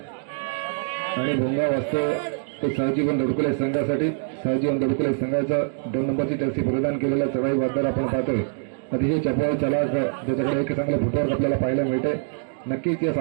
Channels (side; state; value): left; silent; digital silence